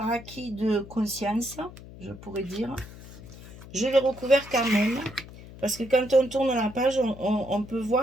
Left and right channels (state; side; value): noise; left; hum, 17 dB below the sound